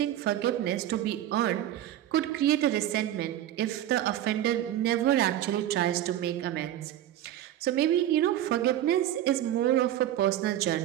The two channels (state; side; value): quieter; left; 12.3 dB